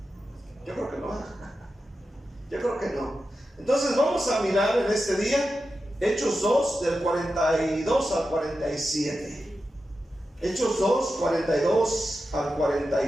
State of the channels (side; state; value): both; normal; correlation 0.91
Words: Yo creo que no. Yo creo que no. Entonces vamos a mirar en este día Hechos 2 del 42 al 47. Hechos 2, 42 al